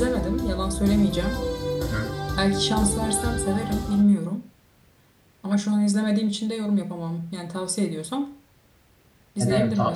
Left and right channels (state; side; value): identical; both; correlation 1.00